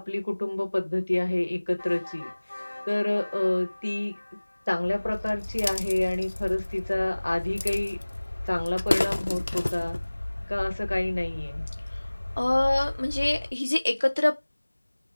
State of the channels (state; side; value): inverted; both; correlation -1.00